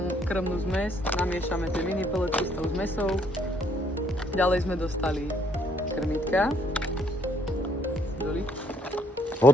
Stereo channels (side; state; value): both; normal; correlation 0.67